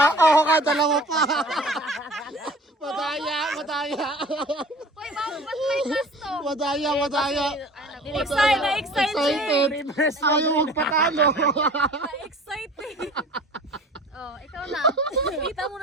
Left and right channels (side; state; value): both; normal; correlation 0.44